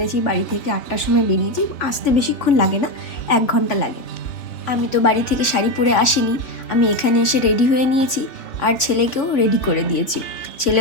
বাড়ি থেকে 8টার সময় বেরিয়েছি। আসতে বেশিক্ষণ লাগে না, 1 ঘন্টা লাগে। আমি তো বাড়ি থেকে শাড়ি পরে আসিনি, আমি এখানে এসে রেডি হয়ে নিয়েছি আর ছেলেকেও রেডি করে দিয়েছি।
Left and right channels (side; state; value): right; late; 3.5 ms